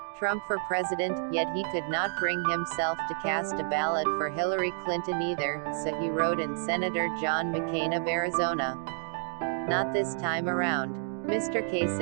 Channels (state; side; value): silent; left; digital silence